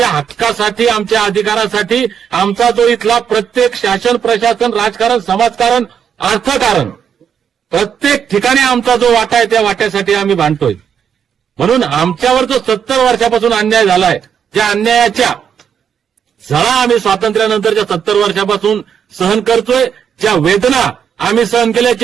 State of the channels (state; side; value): quieter; left; 7.8 dB